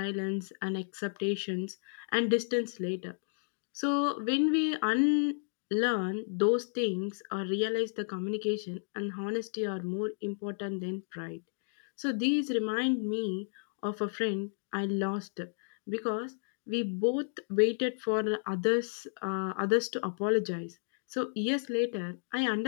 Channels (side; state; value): right; silent; digital silence